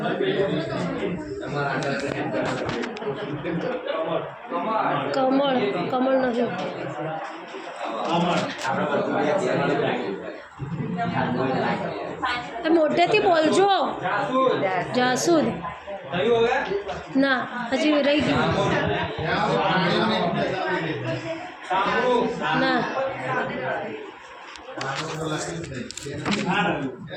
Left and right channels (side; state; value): both; identical; correlation 1.00